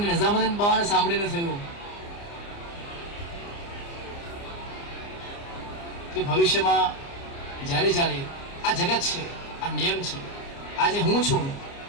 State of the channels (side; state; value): right; late; 29 ms